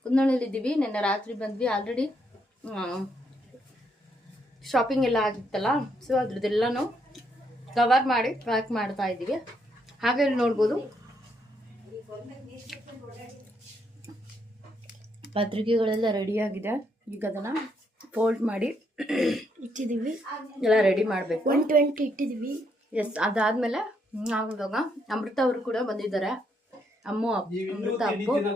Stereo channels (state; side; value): normal; both; correlation 0.75